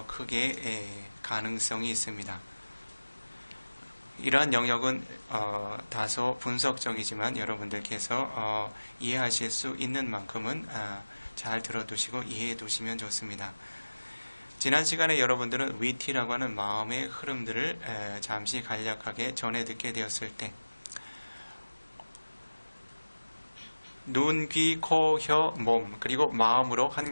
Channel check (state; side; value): inverted; both; correlation -1.00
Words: 크게 가능성이 있습니다. 이러한 영역은 다소 분석적이지만 여러분들께서 이해하실 수 있는 만큼은 잘 들어두시고 이해해 두시면 좋습니다. 지난 시간에 여러분들은 위티라고 하는 마음의 흐름들을 잠시 간략하게 전해 듣게 되었을 때 눈, 귀, 코, 혀, 몸 그리고 마음으로 한